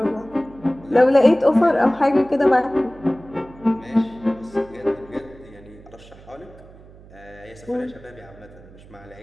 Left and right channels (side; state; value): right; noise; hum, 22 dB below the sound